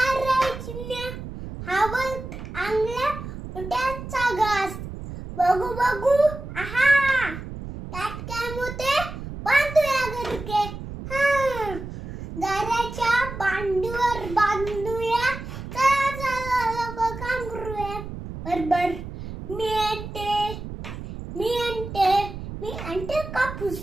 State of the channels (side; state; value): right; noise; rumble, 9 dB below the sound